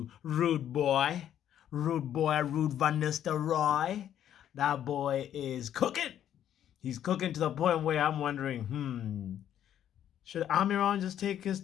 Ruud Boy, Ruud Van Nistelrooy. That boy is cooking. He's cooking to the point where I'm wondering, should Amiron just take his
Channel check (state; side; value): quieter; right; 10.5 dB